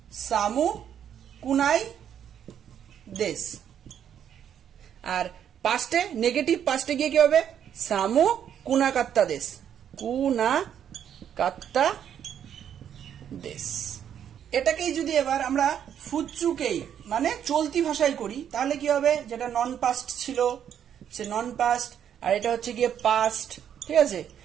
সামু কুনাই দেশ। আর পাস্টে নেগেটিভ পাস্টে গিয়ে কি হবে, সামু কুনাকাত্তা দেশ। এটাকেই যদি এবার আমরা ফুৎসুকেই মানে চলতি ভাষায় করি, তাহলে কি হবে, যেটা নন পাস্ট ছিল সে নন পাস্ট, আর এটা হচ্ছে গিয়ে পাস্ট, ঠিক আছে।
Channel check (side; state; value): left; quieter; 9.2 dB